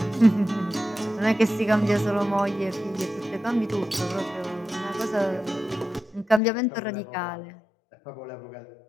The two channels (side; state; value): right; drops out; at 6.4 s